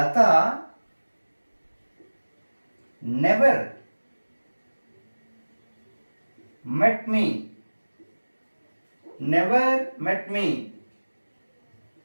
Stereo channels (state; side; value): inverted; both; correlation -1.00